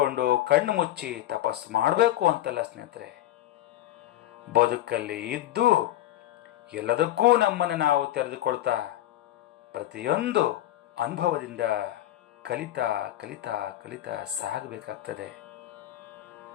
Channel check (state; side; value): quieter; right; 14.0 dB